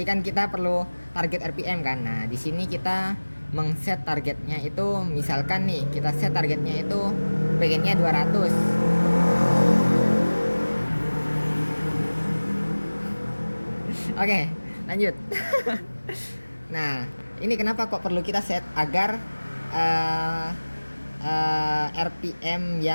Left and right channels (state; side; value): inverted; both; correlation -1.00